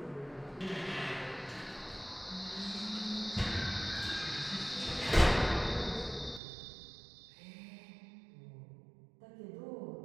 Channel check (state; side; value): drops out; left; at 6.4 s